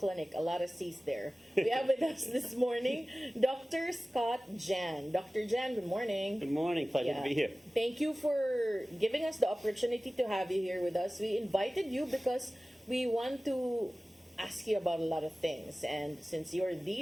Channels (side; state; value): both; normal; correlation 0.97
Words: A lot of C's there. We have with us this morning Dr. Scott Jahn. Dr. Jahn, good morning. Good morning. Pleasure to be here. Thank you for giving us the opportunity to have you here with us. We invited you because we want to ask you about a lot of things, and since you're